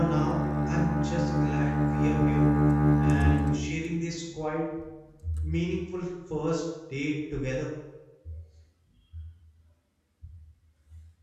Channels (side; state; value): both; identical; correlation 1.00